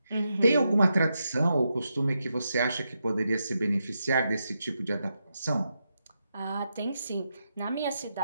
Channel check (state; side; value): inverted; both; correlation -0.85